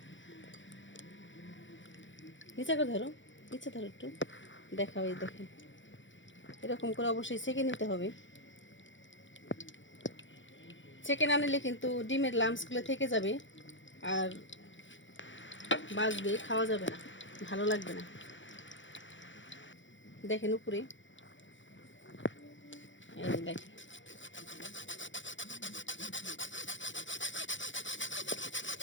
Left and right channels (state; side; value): late; right; 0.55 ms